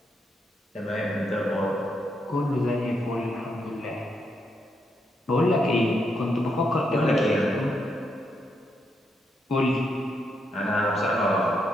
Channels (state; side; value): normal; both; correlation 0.80